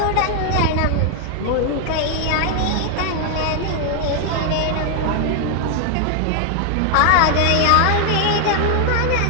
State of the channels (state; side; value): different; both; correlation 0.00